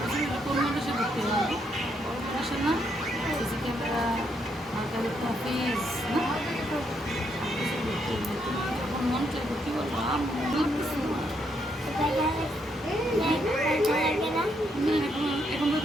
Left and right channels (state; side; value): normal; both; correlation 0.76